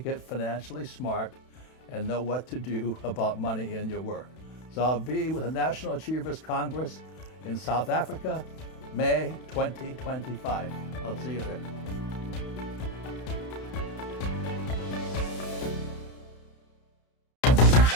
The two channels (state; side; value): late; right; 32 ms